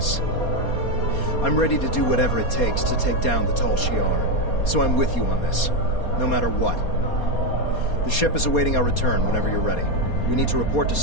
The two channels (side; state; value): right; late; 4.2 ms